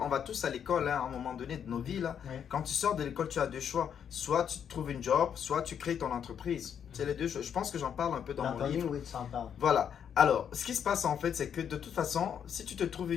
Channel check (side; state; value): right; quieter; 8.3 dB